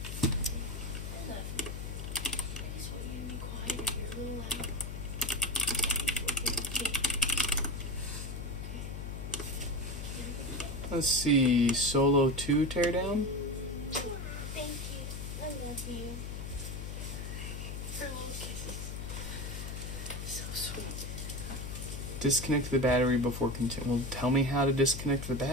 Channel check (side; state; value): left; noise; hum, 6 dB below the sound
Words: I love you. I just want you to be quiet and you're a little loud. Let's see, Solo 2 teardown? Thank you. I love you. Oh, kisses. So sweet. Disconnect the battery before continue. Well, tell me how to disconnect the